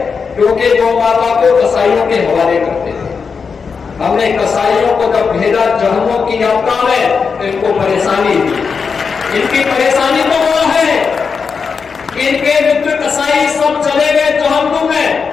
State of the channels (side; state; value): right; quieter; 5.5 dB